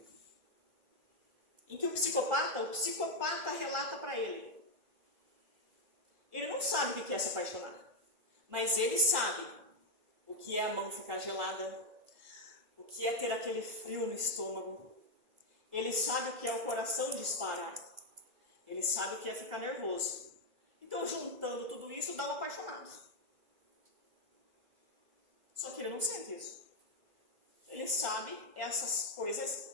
em que o psicopata relata para ele. Ele não sabe o que é se apaixonar, mas ele sabe o que é a mão ficar gelada, o que é ter aquele frio no estômago. Ele sabe o que é o coração disparar. Ele sabe o que é ficar nervoso. Então, juntando tudo isso, dá um apaixonado. Só que ele não sente isso. Ele sabe essas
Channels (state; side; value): late; left; 2.0 ms